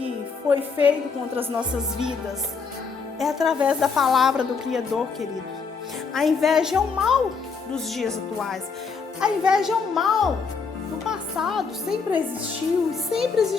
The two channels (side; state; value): right; quieter; 5.2 dB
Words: foi feito contra as nossas vidas? É através da palavra do Criador, querido. A inveja é o mal dos dias atuais. A inveja é o mal do passado. Sempre existiu e sempre